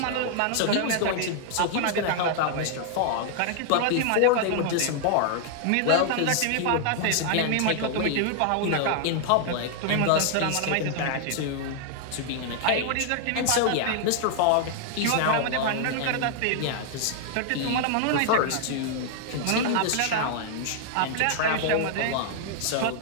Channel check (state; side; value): different; both; correlation -0.01